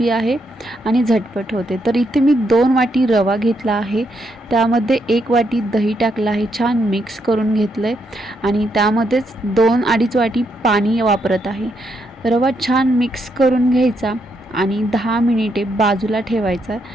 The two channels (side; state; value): both; normal; correlation 0.78